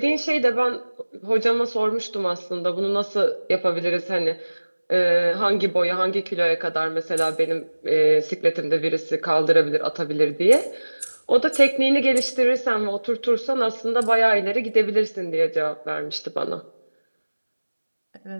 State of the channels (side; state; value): both; inverted; correlation -1.00